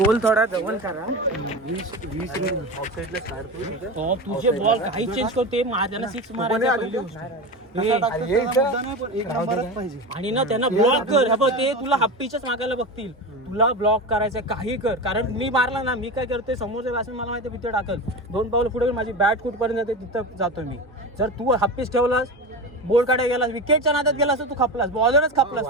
थोडा जवळ करा. 20 ऑफ साईडला स्टार्ट तुझे बॉल काही चेंज करते त्यांना 6 मारायचा आणि ना त्यांना ब्लॉक कर. बघ ते तुला हप्पीच्याच मागायला बघतील. तुला ब्लॉक करायचं काही कर. कारण मी मारला ना मी काय करतोय समोरच्या बॅट्समन मला माहिती भीती टाकल. 2 पावलं पुढे माझी बॅट कुठपर्यंत जाते तिथं जातो मी. जर तू हप्पीच ठेवलास बोल काढायला गेलास विकेटच्या नादात गेलास तर तू खपलास बॉलरच खपलास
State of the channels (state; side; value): normal; both; correlation 0.24